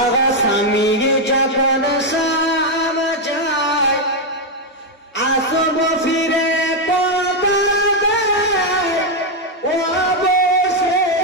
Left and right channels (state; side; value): normal; both; correlation 0.02